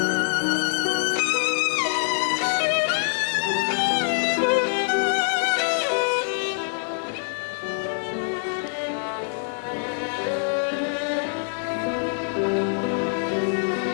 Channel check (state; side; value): silent; right; digital silence